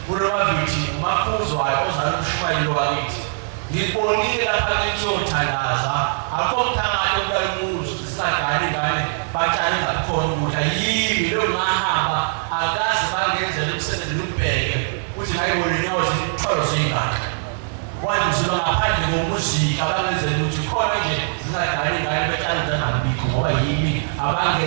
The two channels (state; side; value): silent; left; 65 dB below the other